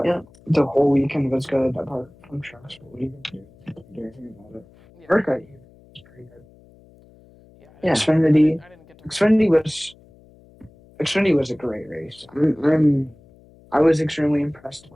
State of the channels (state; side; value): noise; left; hum, 27 dB below the sound